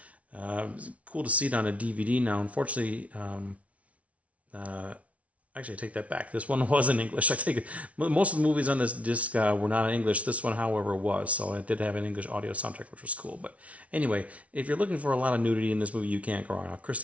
it's cool to see it on a DVD now. Unfortunately, actually, I take that back. This one was in English. I take it. Most of the movies on this disc were not in English. This one, however, was. So it did have an English audio soundtrack, which was cool. But anyway, if you're looking for a lot of nudity in this movie, you can't go wrong.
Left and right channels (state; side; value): late; left; 0.065 ms